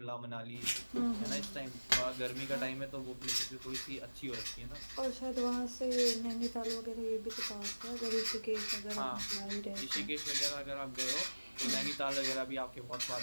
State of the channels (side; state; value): both; inverted; correlation -1.00